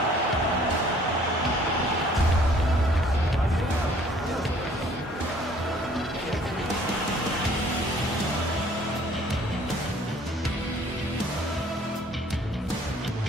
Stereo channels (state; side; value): normal; both; correlation 0.57